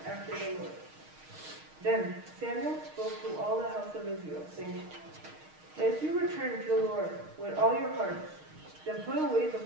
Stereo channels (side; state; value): left; late; 6.4 ms